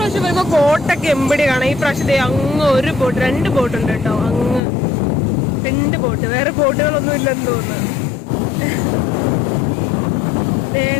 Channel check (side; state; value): right; drops out; at 4.6 s